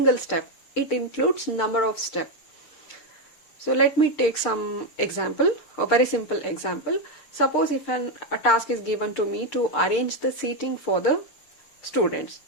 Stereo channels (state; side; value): late; right; 6.7 ms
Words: step. It includes number of steps. So let me take some example, a very simple example. Suppose if a task is given to me to arrange the seating for the students.